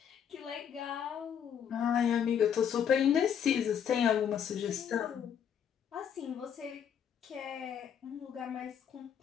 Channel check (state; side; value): quieter; right; 8.3 dB